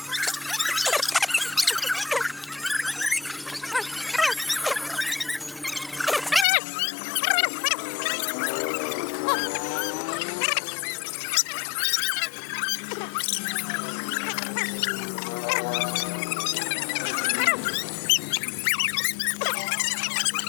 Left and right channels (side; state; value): right; drops out; at 6.5 s